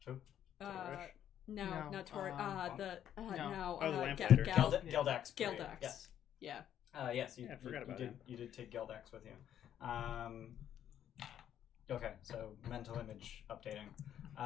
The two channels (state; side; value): quieter; right; 10.3 dB